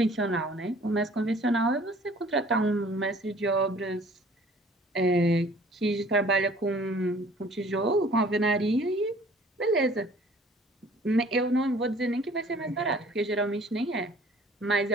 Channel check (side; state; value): both; normal; correlation 0.53